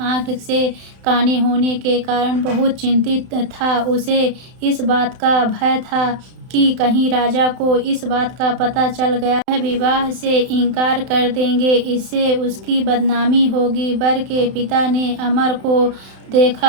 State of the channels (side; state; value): left; late; 31 ms